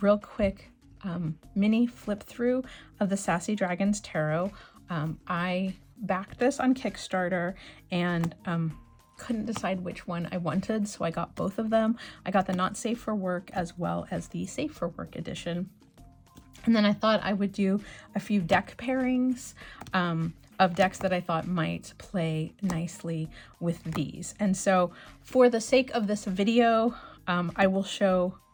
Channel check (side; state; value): both; identical; correlation 1.00